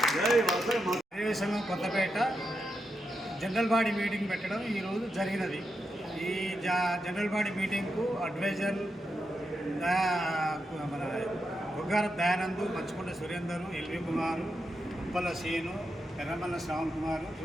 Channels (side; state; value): both; normal; correlation 0.85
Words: వాసవి సంఘం కొత్తపేట జనరల్ బాడీ మీటింగ్ పెట్టడం ఈరోజు జరిగినది. ఈ జనరల్ బాడీ మీటింగ్కు అడ్వైజర్ మన బుగ్గార దయానంద్, మంచుకొండ సురేందర్, ఎల్వి కుమారు, ఉప్పల సీను, ఎర్రమల్ల శ్రావణ్ కుమారు,